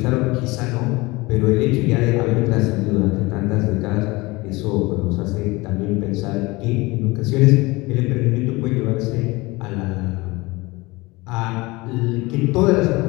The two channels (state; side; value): quieter; right; 22.7 dB